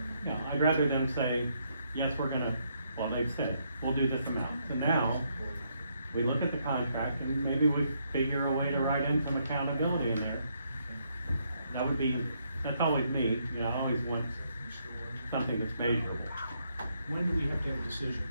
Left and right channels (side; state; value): both; inverted; correlation -0.75